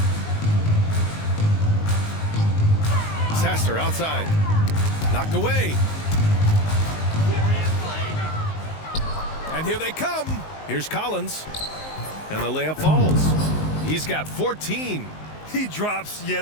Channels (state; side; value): late; right; 19 ms